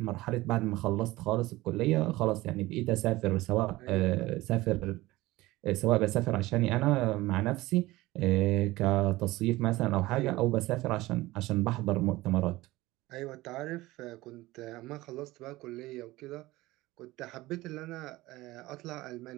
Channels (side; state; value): left; quieter; 18.8 dB